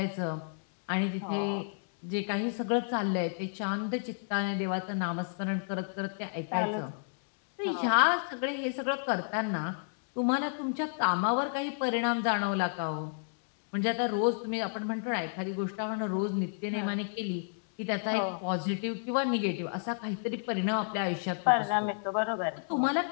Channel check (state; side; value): silent; right; digital silence